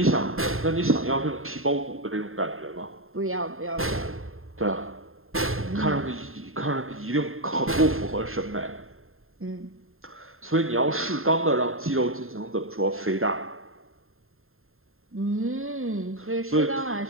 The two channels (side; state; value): left; late; 0.61 ms